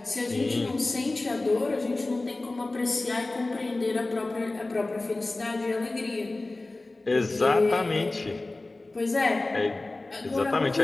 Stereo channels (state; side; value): quieter; right; 3.0 dB